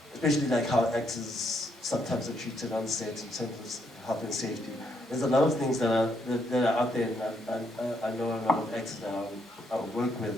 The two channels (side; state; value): both; normal; correlation 0.75